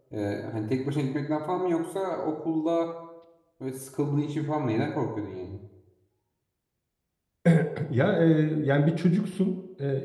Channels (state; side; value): identical; both; correlation 1.00